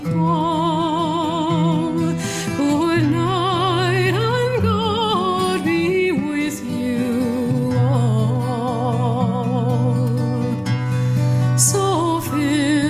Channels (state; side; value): identical; both; correlation 1.00